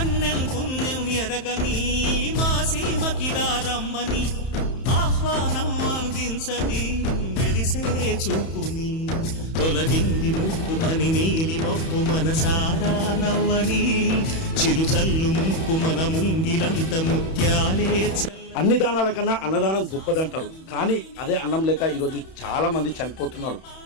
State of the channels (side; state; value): right; late; 31 ms